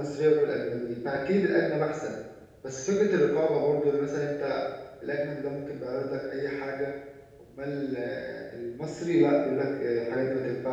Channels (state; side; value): identical; both; correlation 1.00